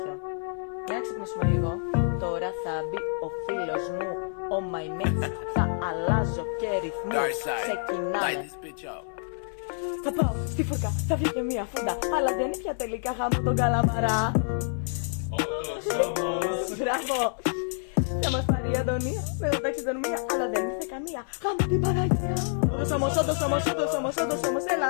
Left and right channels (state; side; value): silent; right; digital silence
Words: Για να ξυπνήσουμε λίγο. Τώρα θα μπει ο φίλος μου, ο my mates. Θα αλλάζω και ρυθμούς. Ξεκινάμε. Θα πάω στη φουρκα, θα βγει και μία φούντα. Αλλά δεν είναι πια τελικά γάμο τον καλαμαρά. Μπράβο. Θα μας πάρει η Αντωνία με το ταξιδονομία. Αλλά δεν ήρθε καμία. Γάμο την Παναγία. Όμως, έλα,